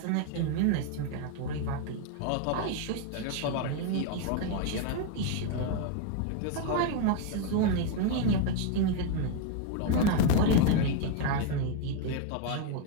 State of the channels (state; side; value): different; both; correlation 0.01